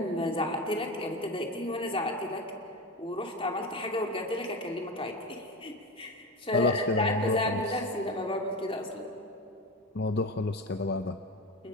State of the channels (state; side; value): normal; both; correlation 0.23